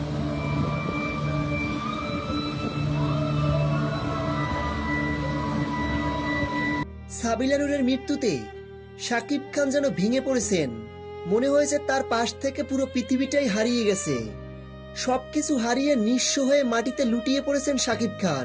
সাবিলা নূরের মৃত্যুতে শাকিব খান যেন ভেঙে পড়েছেন। মনে হয়েছে তার পাশ থেকে পুরো পৃথিবীটাই হারিয়ে গেছে। সবকিছু হারিয়ে নিঃস্ব হয়ে মাটিতে লুটিয়ে পড়েছেন শাকিব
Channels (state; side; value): identical; both; correlation 1.00